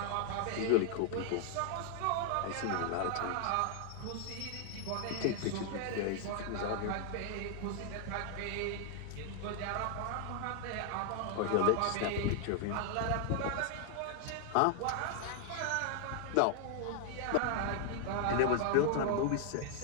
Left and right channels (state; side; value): different; both; correlation 0.00